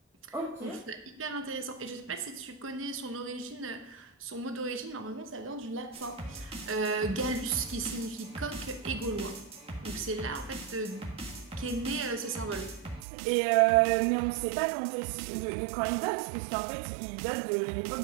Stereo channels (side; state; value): left; drops out; at 13.1 s